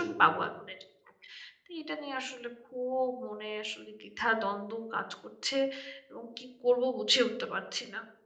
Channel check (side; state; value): both; identical; correlation 1.00